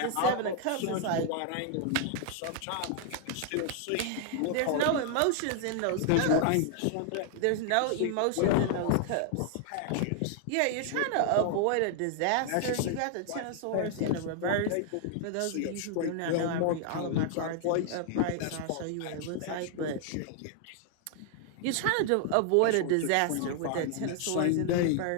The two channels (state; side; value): different; both; correlation 0.00